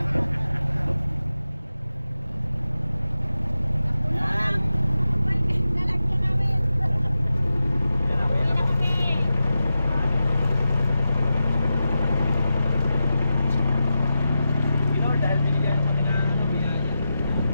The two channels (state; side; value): inverted; both; correlation -0.91